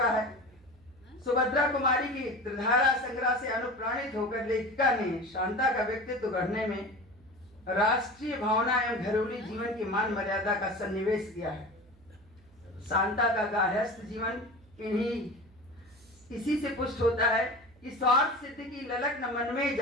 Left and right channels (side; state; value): right; noise; hum, 28 dB below the sound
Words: है। सुभद्रा कुमारी की त्रिधारा संग्रह से अनुप्राणित होकर लेखिका ने शांता का व्यक्तित्व गढ़ने में राष्ट्रीय भावना एवं घरेलू जीवन की मान मर्यादा का सन्निवेश किया है। शांता का गार्हस्थ जीवन इसी से पुष्ट होता है कि स्वार्थ सिद्धि की ललक न मन में